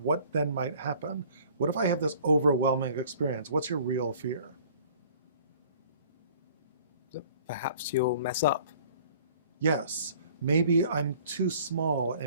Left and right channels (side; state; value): both; inverted; correlation -0.52